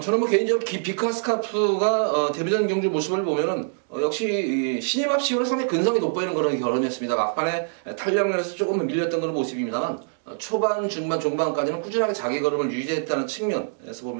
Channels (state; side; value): silent; left; digital silence